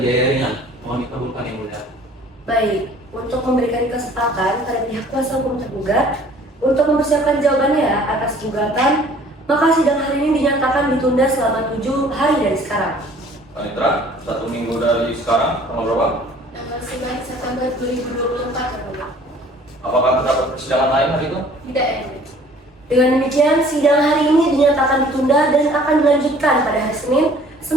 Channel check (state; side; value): normal; both; correlation 0.53